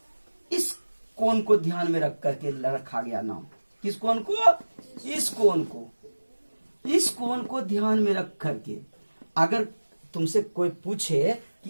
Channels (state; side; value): inverted; both; correlation -1.00